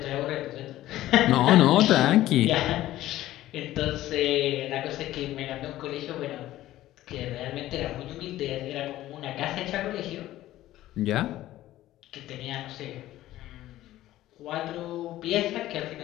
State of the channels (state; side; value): quieter; right; 14.8 dB